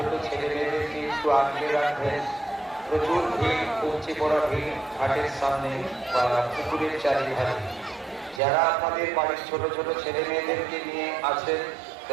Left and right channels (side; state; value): left; drops out; at 8.4 s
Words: ছেলে মেয়েদেরকে একটু আগলে রাখবেন। প্রচুর ভিড়, উপচে পড়া ভিড় ঘাটের সামনে বা পুকুরের চারিধারে। যারা আপনাদের বাড়ির ছোট ছোট ছেলে মেয়েদেরকে নিয়ে আছেন